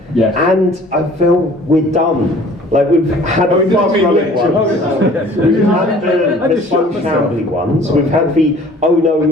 Yes. And I feel we're done. Like we've had Oh, the you didn't fast mean running literally. ones, we've had the slow shambly ones, we've had the oh no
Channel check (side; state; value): both; normal; correlation 0.51